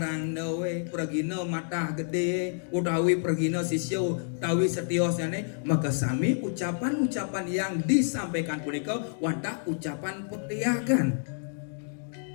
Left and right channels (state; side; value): silent; right; digital silence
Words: pergina mata gede utawi pergina sisyo utawi setiosane maka sami ucapan-ucapan yang disampaikan punika wantah ucapan petiakan.